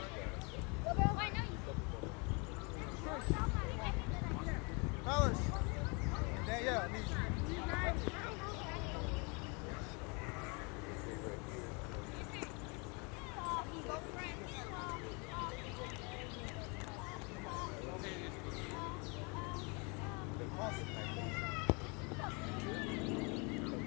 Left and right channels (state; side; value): quieter; right; 31.6 dB